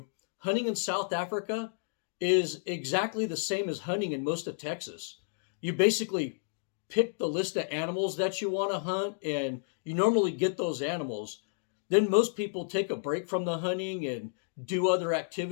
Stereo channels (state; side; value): silent; right; digital silence